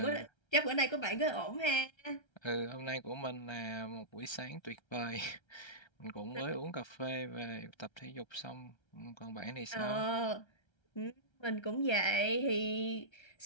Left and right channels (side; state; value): right; late; 1.3 ms